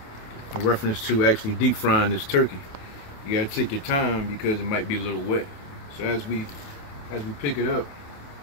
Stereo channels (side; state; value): right; late; 28 ms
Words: in reference to actually deep frying this turkey. You gotta take your time because it might be a little wet. So as we pick it up,